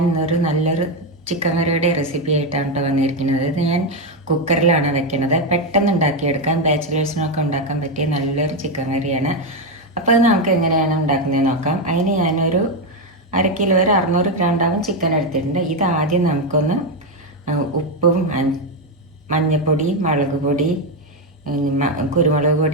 ഇന്നൊരു നല്ലൊരു ചിക്കൻ കറിയുടെ റെസിപ്പി ആയിട്ടാണ് കേട്ടോ വന്നിരിക്കുന്നത്. ഇത് ഞാൻ കുക്കറിലാണ് വെക്കുന്നത്. പെട്ടെന്ന് ഉണ്ടാക്കിയെടുക്കാൻ, ബാച്ചിലേഴ്സിനൊക്കെ ഉണ്ടാക്കാൻ പറ്റിയ നല്ലൊരു ചിക്കൻ കറിയാണ്. അപ്പോൾ അത് നമുക്ക് എങ്ങനെയാണ് ഉണ്ടാക്കുന്നത് നോക്കാം. അതിന് ഞാനൊരു 1/2 കിലോ വരെ 600 ഗ്രാം ചിക്കൻ എടുത്തിട്ടുണ്ട്. ഇത് ആദ്യം നമുക്കൊന്ന് ഉപ്പും മഞ്ഞൾപ്പൊടി, മുളക് പൊടി, കുരുമുളക്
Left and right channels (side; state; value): both; normal; correlation 0.06